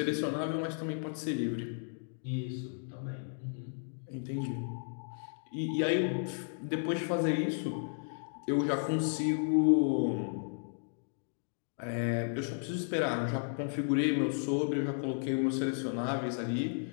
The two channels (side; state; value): right; silent; digital silence